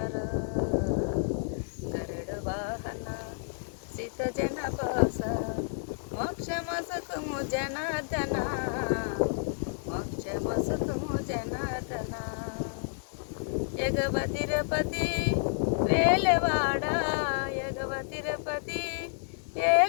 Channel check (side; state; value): right; silent; digital silence